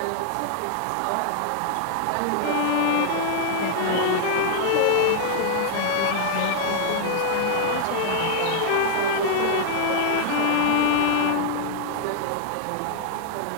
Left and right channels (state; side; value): different; both; correlation -0.01